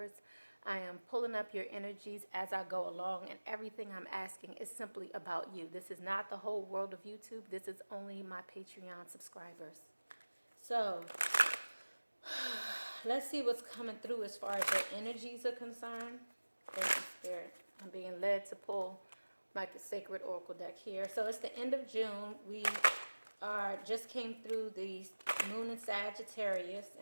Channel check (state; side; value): inverted; both; correlation -1.00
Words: I am pulling up your energies as I go along, and everything I'm asking is simply about you. This is not the whole world of YouTube. This is only my Patreon subscribers. So let's see what's coming through as far as your energies are concerned. Thank you, Spirit. I'm being led to pull like the Sacred Oracle deck here. So it's the end of June. We just came through the moon in Sagittarius,